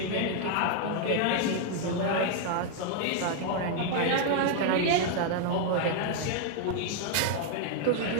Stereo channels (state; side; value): different; both; correlation 0.00